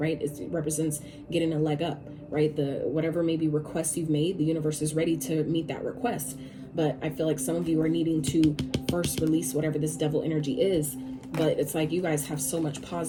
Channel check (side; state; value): both; identical; correlation 1.00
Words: It represents getting a leg up, right? Whatever maybe requests you've made, the universe is ready to meet that request. But I feel like some of you are needing to first release whatever this devil energy is. But it's like you guys have so much